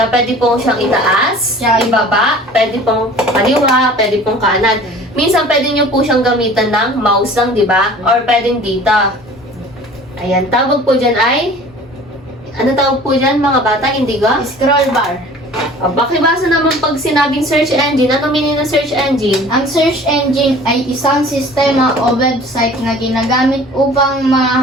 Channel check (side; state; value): both; normal; correlation 0.46